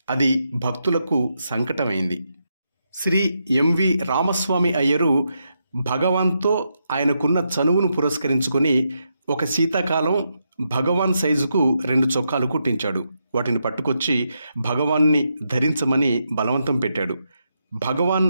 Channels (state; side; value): inverted; both; correlation -0.83